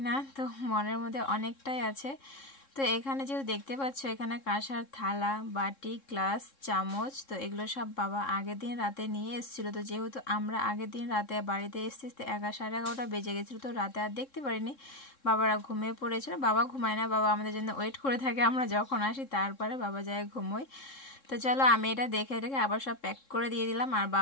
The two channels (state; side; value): late; right; 3.7 ms